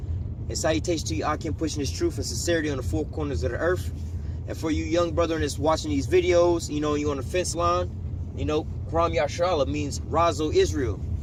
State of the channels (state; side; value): identical; both; correlation 1.00